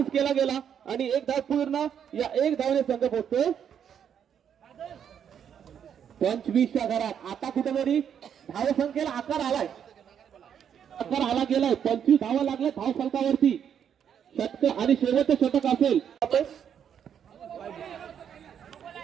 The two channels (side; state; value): left; quieter; 8.5 dB